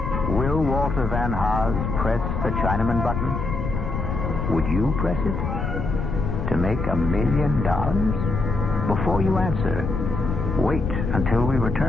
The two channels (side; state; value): left; noise; rumble, 3 dB below the sound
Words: Will Walter Van Haas press the Chinaman button? Would you press it? To make $1 million? Before you answer, wait until we